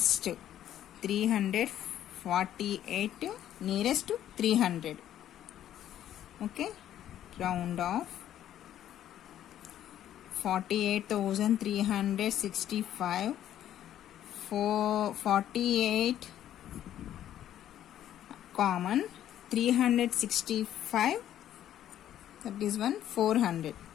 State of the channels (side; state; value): right; quieter; 11.5 dB